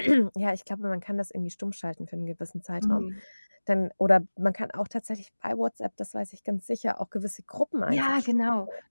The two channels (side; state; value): both; inverted; correlation -1.00